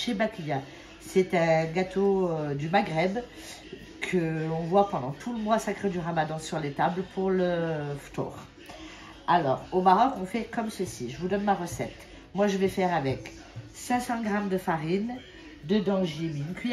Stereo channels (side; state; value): both; identical; correlation 1.00